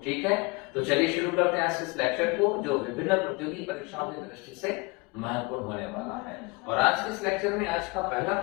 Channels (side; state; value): right; quieter; 27.2 dB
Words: ठीक है, तो चलिए शुरू करते हैं आज के इस लेक्चर को, जो विभिन्न प्रतियोगी परीक्षाओं की दृष्टि से महत्वपूर्ण होने वाला है। और आज के इस लेक्चर में आज का पहला